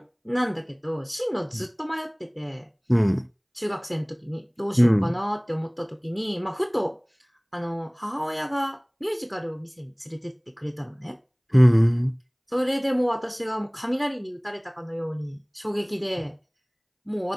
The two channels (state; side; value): identical; both; correlation 1.00